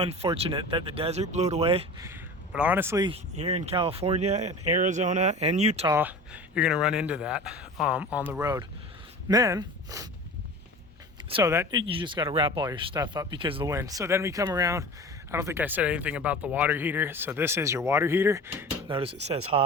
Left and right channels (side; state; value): both; normal; correlation 0.36